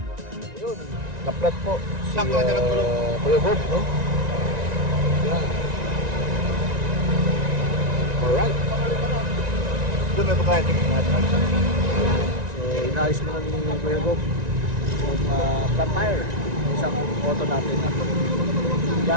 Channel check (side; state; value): left; late; 1.9 ms